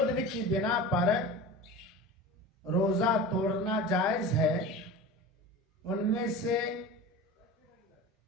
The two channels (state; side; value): normal; both; correlation 0.32